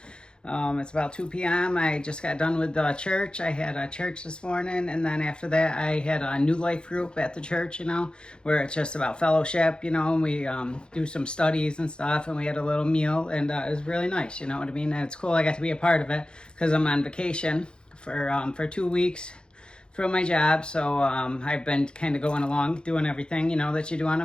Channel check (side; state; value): right; late; 0.050 ms